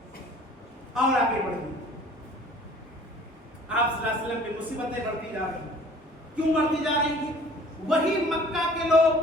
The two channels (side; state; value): both; normal; correlation 0.51